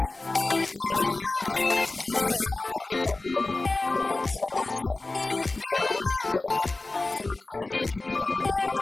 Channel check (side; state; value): right; quieter; 3.2 dB